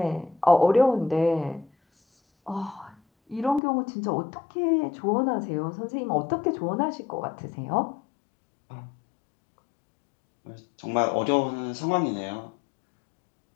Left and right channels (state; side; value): drops out; right; at 3.6 s